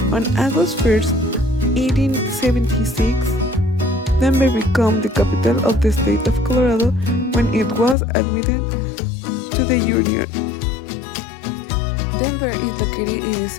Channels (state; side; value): drops out; right; at 8.0 s